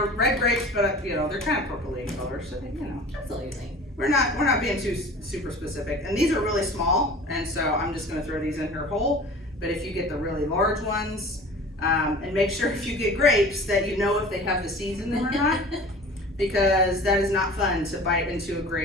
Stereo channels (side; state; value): both; normal; correlation 0.41